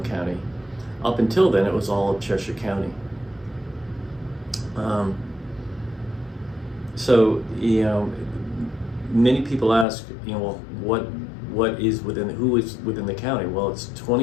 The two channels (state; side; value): drops out; right; at 9.9 s